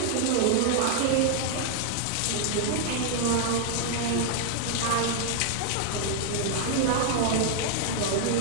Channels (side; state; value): both; different; correlation 0.00